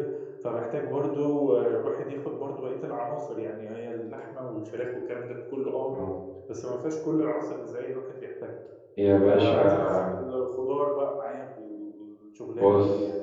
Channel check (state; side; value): identical; both; correlation 1.00